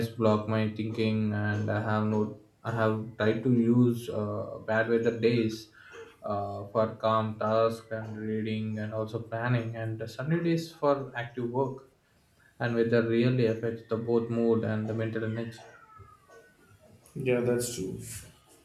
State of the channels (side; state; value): both; identical; correlation 1.00